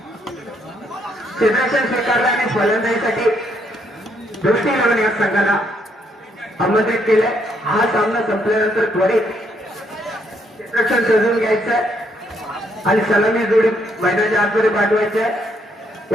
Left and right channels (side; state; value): both; normal; correlation 0.73